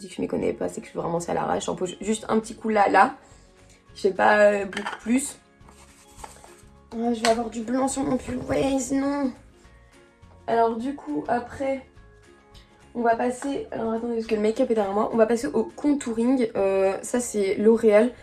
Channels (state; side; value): identical; both; correlation 1.00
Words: que je ne m'y connais pas, c'est que je suis vraiment ça à l'arrache. J'en pose juste un petit coup là. Je sais pas beaucoup plus. Je vais avoir du blanc sur mon pull. Ouais, sinon. Alors du coup, après, on va passer... Alors attendez, parce que le make-up est derrière moi. On va passer au contouring. Ça, c'est L'Oréal.